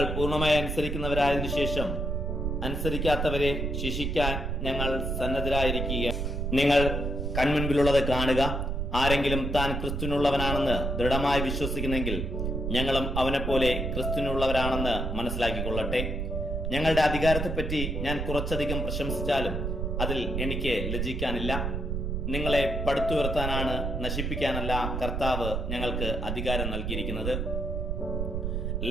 പൂർണ്ണമായി അനുസരിക്കുന്നവരായതിനു ശേഷം അനുസരിക്കാത്തവരെ ശിക്ഷിക്കാൻ ഞങ്ങൾ സന്നദ്ധരായിരിക്കുക. നിങ്ങൾ കൺമുൻപിലുള്ളത് കാണുക. ആരെങ്കിലും താൻ ക്രിസ്തുവിനുള്ളവനാണെന്ന് ദൃഢമായി വിശ്വസിക്കുന്നെങ്കിൽ ഞങ്ങളും അവനെപ്പോലെ ക്രിസ്തുവിനുള്ളവരാണെന്ന് മനസ്സിലാക്കിക്കൊള്ളട്ടെ. ഞങ്ങളുടെ അധികാരത്തെപ്പറ്റി ഞാൻ കുറച്ചധികം പ്രശംസിച്ചാലും അതിൽ എനിക്ക് ലജ്ജിക്കാനില്ല. നിങ്ങളെ പടുത്തുയർത്താനാണ്, നശിപ്പിക്കാനല്ല കർത്താവ് ഞങ്ങൾക്ക് അധികാരം നൽകിയിരിക്കുന്നത്.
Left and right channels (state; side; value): noise; right; rumble, 2 dB below the sound